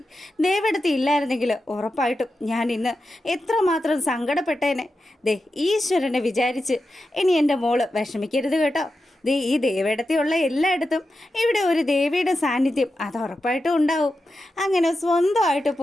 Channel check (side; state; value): both; normal; correlation 0.90